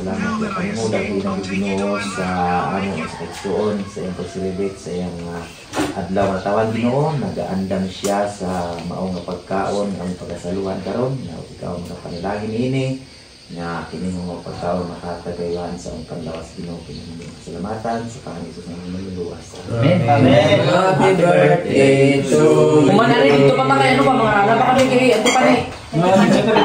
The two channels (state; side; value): identical; both; correlation 1.00